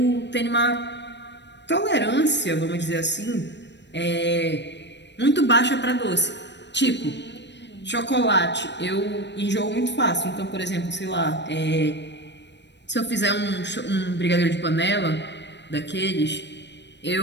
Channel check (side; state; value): right; late; 0.51 ms